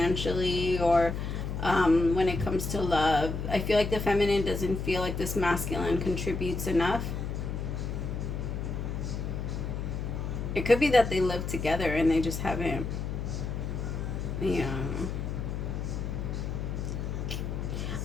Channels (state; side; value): noise; left; hum, 4 dB below the sound